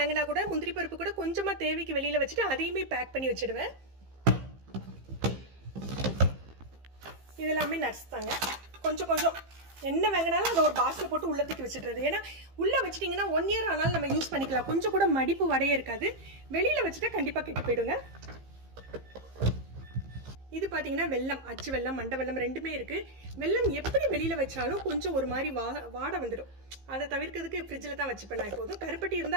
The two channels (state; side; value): late; left; 15 ms